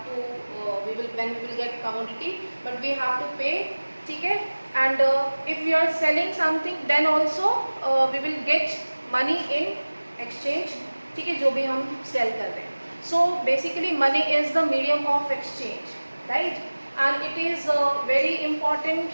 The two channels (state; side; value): inverted; both; correlation -1.00